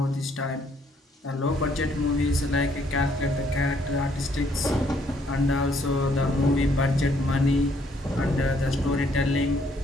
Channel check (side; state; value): both; normal; correlation 0.67